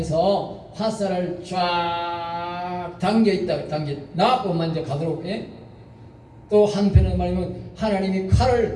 화살을 쫙 당겨있다. 나뿐만 이제 가도록. 또 한편은 말하면 하나님이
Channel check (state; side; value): identical; both; correlation 1.00